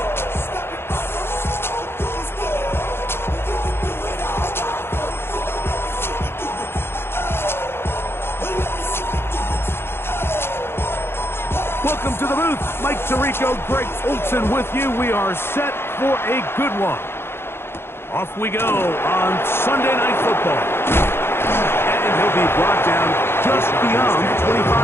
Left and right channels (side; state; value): right; late; 0.11 ms